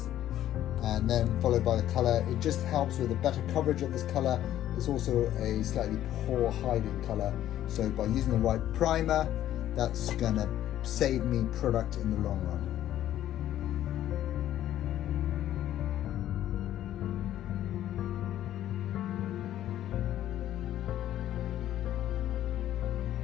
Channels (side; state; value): right; quieter; 12.3 dB